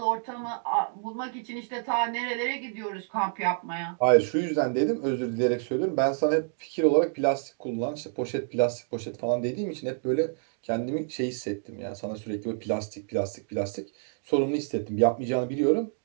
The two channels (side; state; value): left; silent; 59 dB below the other